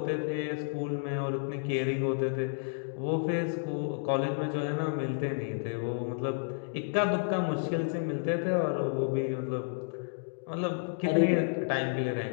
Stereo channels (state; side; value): silent; right; digital silence